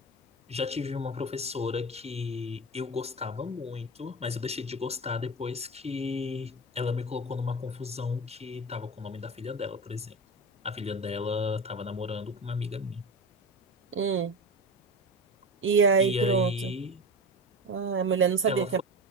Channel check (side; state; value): both; normal; correlation 0.25